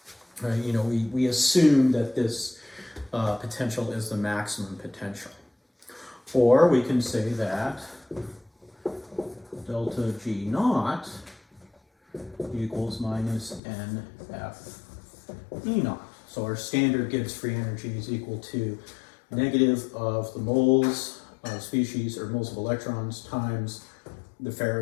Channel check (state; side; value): drops out; right; at 13.6 s